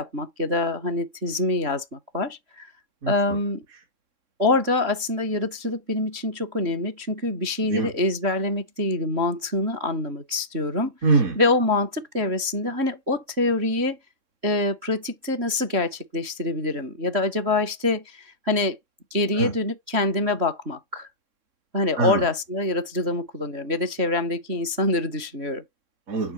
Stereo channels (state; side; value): late; left; 3.6 ms